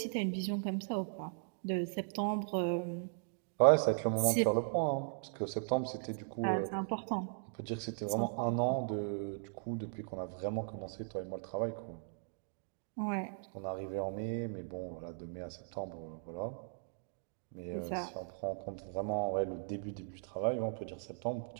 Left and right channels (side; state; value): left; silent; digital silence